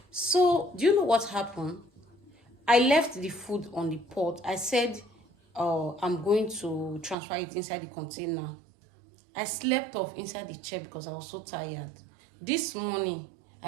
So do you know what happened? I left the food on the pot. I said I'm going to transfer it inside the container. I slept off inside the chair because I was so tired. This morning,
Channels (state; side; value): drops out; left; at 7.2 s